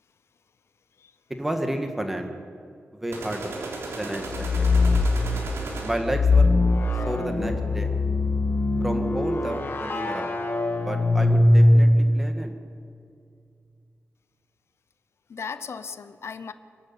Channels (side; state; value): both; normal; correlation 0.93